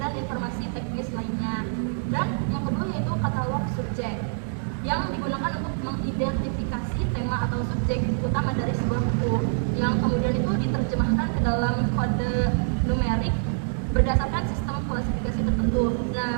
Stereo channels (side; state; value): left; silent; digital silence